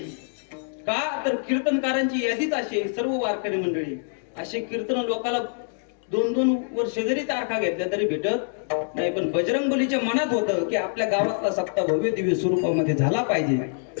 का तर कीर्तनकारांची यादीच अशी, सर्व वारकरी मंडळी असे कीर्तन लोकांना 2-2 वर्ष जरी तारखा घेतल्या तरी भेटत नाही. पण बजरंगबलीच्या मनात होतं की आपल्या गावातला सप्ताह भव्य दिव्य स्वरूपामध्ये झाला पाहिजे.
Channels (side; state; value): right; silent; digital silence